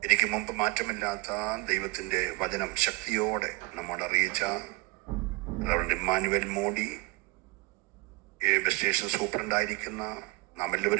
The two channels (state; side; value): quieter; left; 23.6 dB